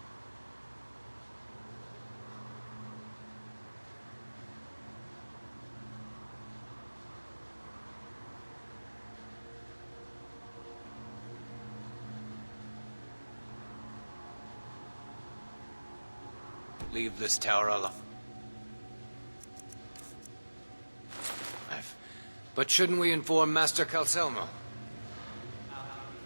Leave this tower alone. But shouldn't we inform Master Calcelmo?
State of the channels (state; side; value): inverted; both; correlation -1.00